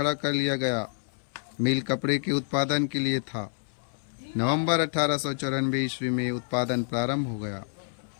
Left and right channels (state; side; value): silent; right; 59 dB below the other